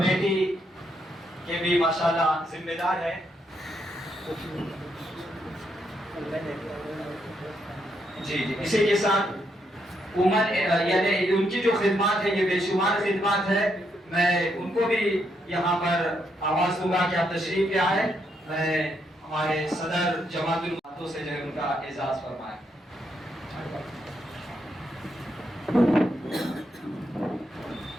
کے بھی ماشاءاللہ ذمہ دار ہیں. جی اسی کے ساتھ یعنی ان کی جو خدمات ہے یہ بے شمار خدمات ہے. میں ان کو بھی یہاں پر آواز دوں گا کہ آپ تشریف لے آئے. میں ہمارے صدر جماعت الماتوں سے جو ہے ان کا اعزاز فرمائے.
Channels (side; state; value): both; normal; correlation 0.77